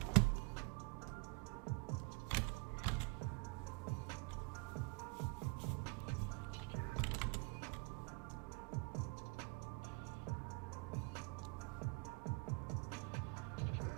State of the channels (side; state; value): left; quieter; 31.0 dB